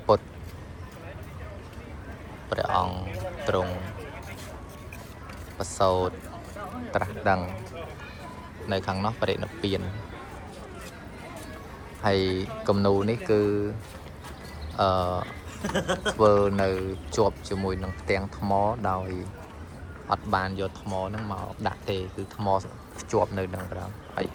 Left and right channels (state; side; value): identical; both; correlation 1.00